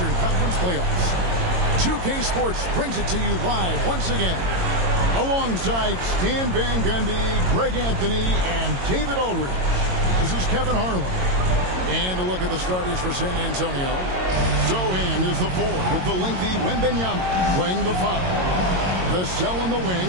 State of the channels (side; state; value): left; late; 22 ms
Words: Conference playoffs. 2K Sports brings it to you live once again, alongside Stan Van Gundy, Greg Anthony, and David Aldridge. This is Kevin Harlan. And a look at the starters for San Antonio. Zohan is the 4 with the lengthy Wembanyama playing the 5. The Cell on the